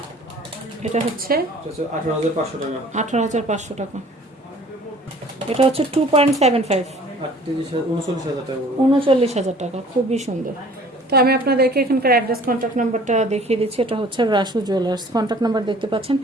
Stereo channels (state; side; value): normal; both; correlation 0.51